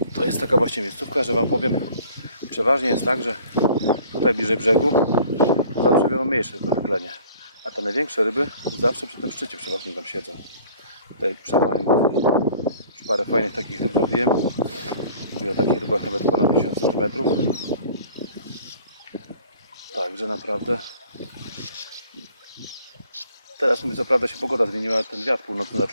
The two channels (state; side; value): inverted; both; correlation -0.51